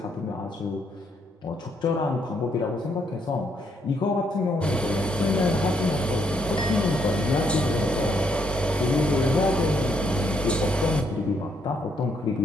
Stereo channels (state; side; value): normal; both; correlation 0.73